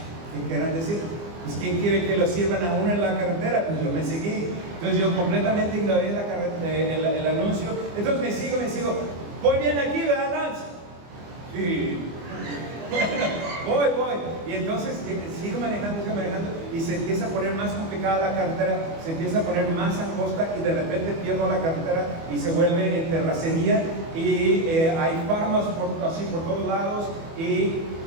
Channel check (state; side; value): late; left; 24 ms